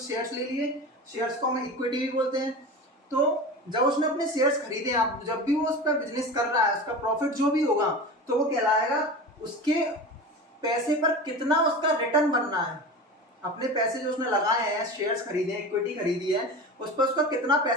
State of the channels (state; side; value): normal; both; correlation 0.31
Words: शेयर्स ले लिए। शेयर्स को हम इक्विटी भी बोलते हैं। तो जब उसने अपने शेयर्स खरीदे, आप जब भी वो उस पर बिजनेस कर रहा है, उसका प्रॉफिट जो भी होगा तो वो कहलाएगा उसके पैसे पर कितना उसका रिटर्न बनना है। अपने पैसे जो उसने लगाए हैं, शेयर्स खरीदे हैं, इक्विटी खरीदी है, उस पर उसका कितना